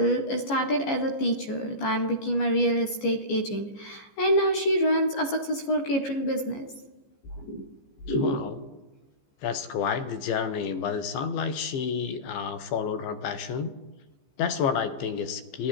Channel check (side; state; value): right; late; 14 ms